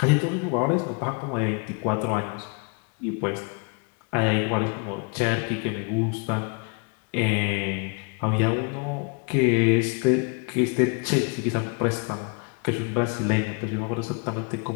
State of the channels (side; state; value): right; quieter; 36.1 dB